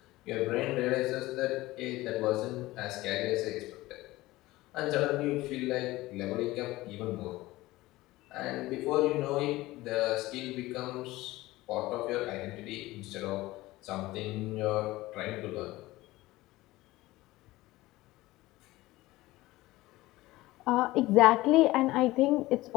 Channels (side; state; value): right; quieter; 18.5 dB